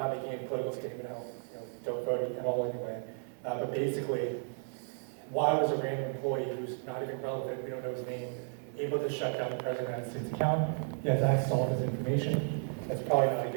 making any political statement out, don't vote at all anyway. But basically, why was a random employee who's not even relevant, we don't know his name, able to shut down the President of the United States account? He has access to all of his information. That's probably not a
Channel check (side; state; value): left; silent; 55 dB below the other